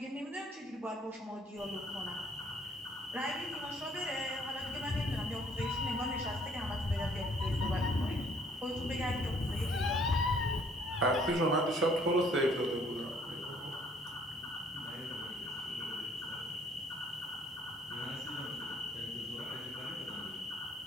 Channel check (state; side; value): normal; both; correlation 0.62